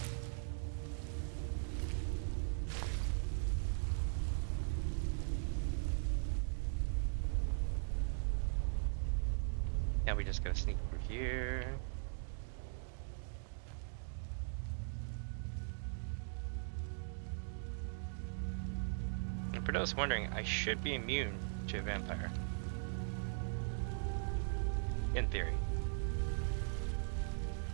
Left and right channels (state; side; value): silent; left; digital silence